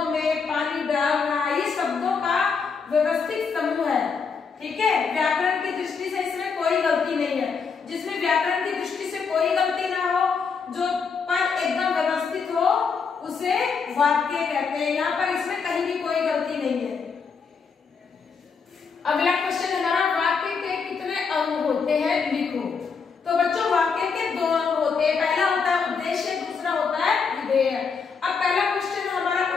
में पानी डाल रहा है, ये शब्दों का व्यवस्थित समूह है। ठीक है, व्याकरण की दृष्टि से इसमें कोई गलती नहीं है। जिसमें व्याकरण की दृष्टि से कोई गलती ना हो, जो पद एकदम व्यवस्थित हो, उसे वाक्य कहते हैं। यहाँ पर इसमें कहीं भी कोई गलती नहीं है। अगला क्वेश्चन हमारा, वाक्य के कितने अंग होते हैं, लिखो। तो बच्चों, वाक्य के दो अंग होते हैं। पहला होता है उद्देश्य, दूसरा होता है विधेय। अब पहला क्वेश्चन हमारा,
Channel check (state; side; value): quieter; right; 5.5 dB